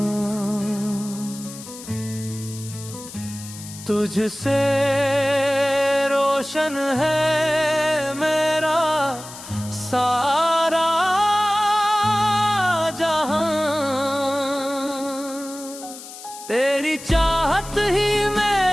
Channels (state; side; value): noise; left; hiss, 14 dB below the sound